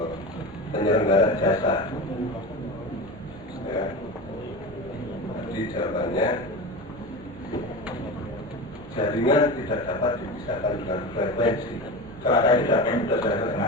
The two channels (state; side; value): normal; both; correlation 0.27